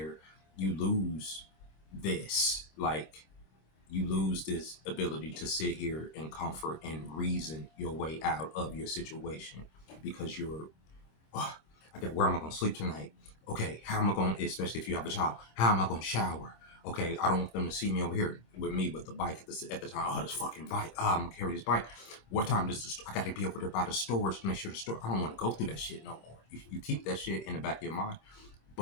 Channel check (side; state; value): right; late; 26 ms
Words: you lose this. Like, you lose this ability to sit here and comfort and reason your way out of your situation because you're, oh, okay, where am I going to sleep tonight? Okay, how am I going to, especially if you have a child, how am I going to shower? Okay, I don't want them to see me over here with me with the bike at the time. Oh, this fucking bike. Oh, I'm going to carry this bike. What time does I got to be over there by the stores to make sure the store, I don't want to go through that shit no more. You keep that shit in the back of your mind,